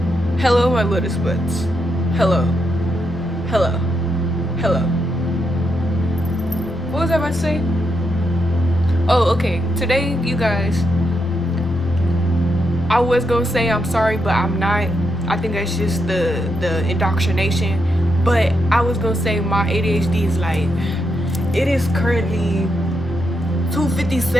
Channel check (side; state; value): both; normal; correlation 0.82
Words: Hello, my lotus buds. Hello, hello, hello. What was I about to say? Oh, okay. Today, you guys, I was gonna say I'm sorry, but I'm not. I think that's just the indoctrination. But I was gonna say my ADHD is like, it is currently